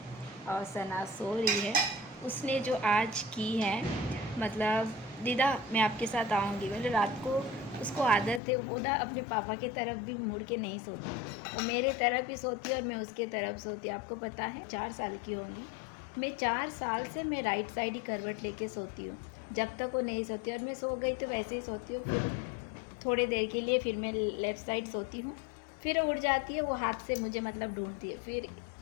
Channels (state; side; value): drops out; right; at 8.4 s